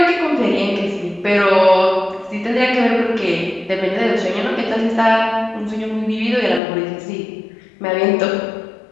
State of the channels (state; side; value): drops out; right; at 6.6 s